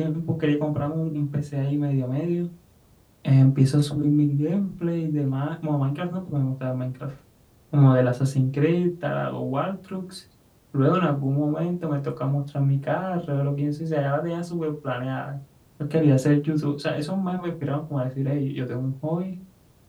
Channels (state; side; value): identical; both; correlation 1.00